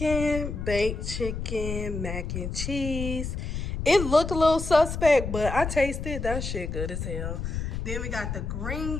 baked chicken, mac and cheese. It looked a little suspect, but I tasted that shit good as hell. Then we got the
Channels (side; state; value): left; noise; rumble, 4 dB below the sound